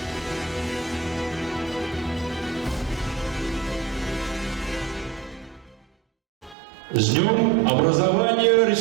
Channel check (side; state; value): left; drops out; at 6.6 s